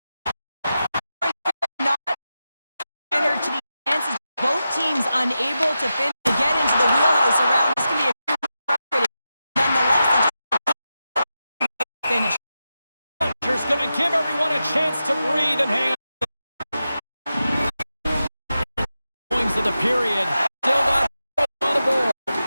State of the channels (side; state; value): both; inverted; correlation -0.91